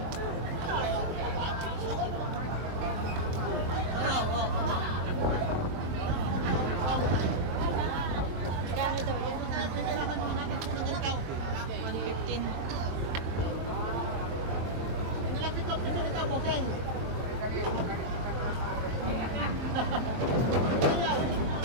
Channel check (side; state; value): left; late; 23 ms